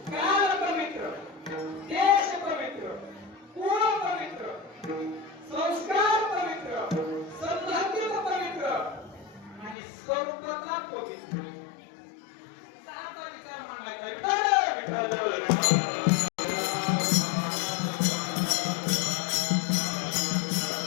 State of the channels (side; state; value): right; drops out; at 9.8 s